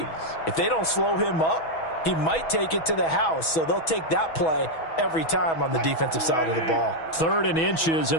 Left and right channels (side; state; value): right; late; 6.2 ms